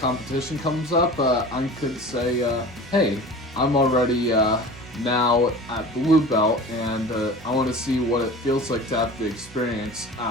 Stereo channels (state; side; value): normal; both; correlation 0.38